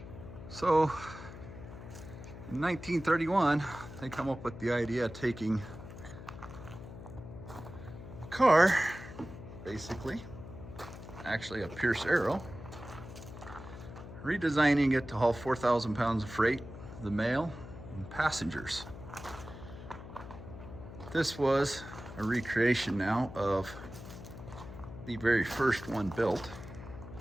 So in 1931, they come up with the idea of taking a car, basically, actually a Pierce Arrow, redesigning it to haul 4,000 pounds of freight, the mail, and passengers. This was a recreation now of the very first one built.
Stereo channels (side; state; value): left; noise; hum, 13 dB below the sound